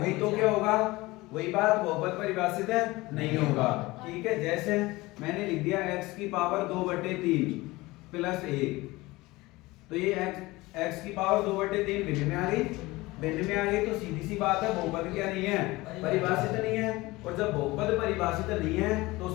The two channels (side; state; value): right; quieter; 20.7 dB